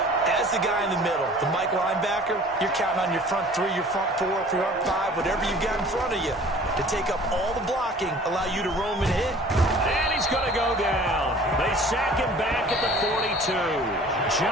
as the guy in the middle, the Mike linebacker, you're counting on your front 3, your front 4, your front 5, whatever you've got in front of you to take up all the blocking, allow you to roam and hit. And he's going to go down. They sack him back at the 42.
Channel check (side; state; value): both; normal; correlation 0.48